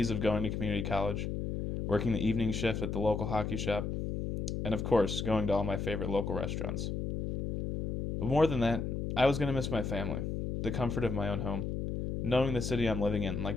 of going to community college, working the evening shift at the local hockey shop, and of course, going to all my favorite local restaurants. But more than that, I was going to miss my family, the comfort of my own home, knowing the city I'm living in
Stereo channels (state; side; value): noise; left; hum, 2 dB below the sound